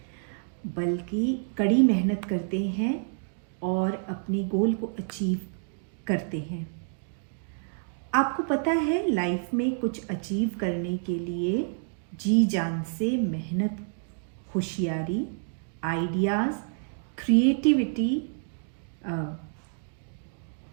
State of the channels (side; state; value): left; silent; digital silence